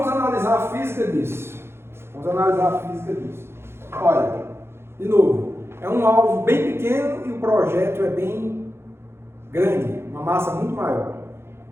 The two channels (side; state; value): left; late; 0.12 ms